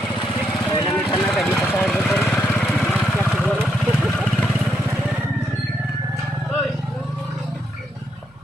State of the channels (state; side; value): noise; right; hum, 29 dB below the sound